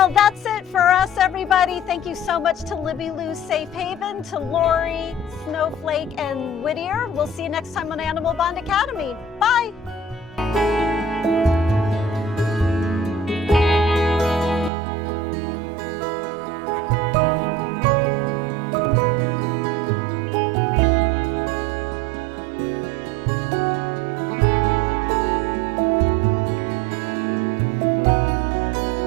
that's it for us, everybody. Thank you so much to Libby Lou Safe Haven, to Lori, Snowflake, and Whittier. We'll see you next time on Animal Bond Academy. Bye.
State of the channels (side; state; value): left; drops out; at 14.7 s